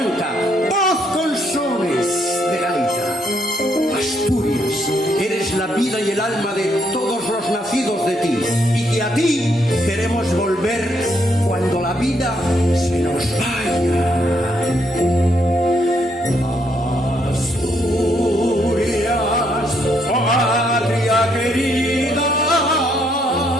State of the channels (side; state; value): both; normal; correlation 0.73